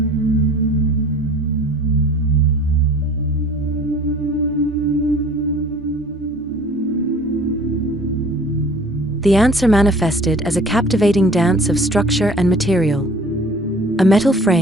The answer manifested as a captivating dance of structure and material. A metal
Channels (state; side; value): normal; both; correlation 0.48